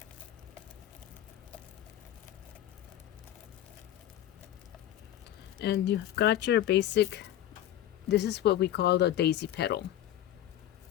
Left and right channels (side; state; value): right; quieter; 12.2 dB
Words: And you've got your basic, this is what we call the daisy petal.